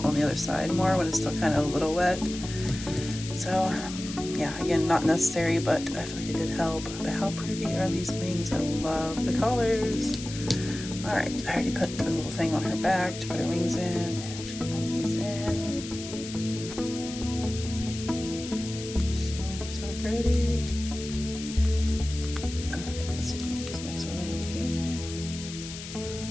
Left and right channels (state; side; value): noise; left; hiss, 11 dB below the sound